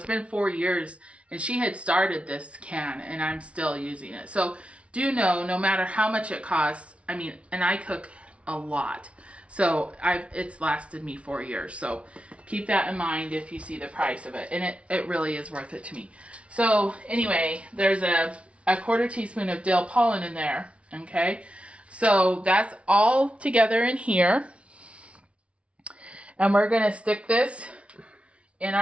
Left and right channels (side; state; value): left; late; 0.061 ms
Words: been 4 years, and she had started this can, and I'm still using it. So do know, no matter how much it costs, I mean, and I cook a lot, so it's lasted me 4 years. So keep that in mind if you see the price of it, and it really is worth it to me. So anyway, there's a 1/4 teaspoon of dill pollen in there, okay? So that's all together in here, and we're gonna stick this in